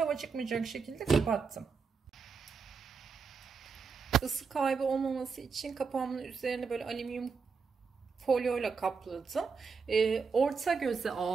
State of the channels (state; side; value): quieter; left; 5.3 dB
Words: çıkmayacak şekilde kapattım. Isı kaybı olmaması için kapağımın üzerine böyle alüminyum folyoyla kapladım. Orta göze